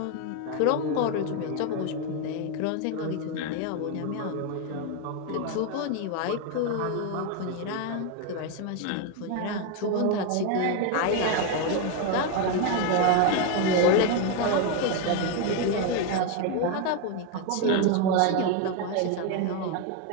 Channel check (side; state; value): both; different; correlation 0.01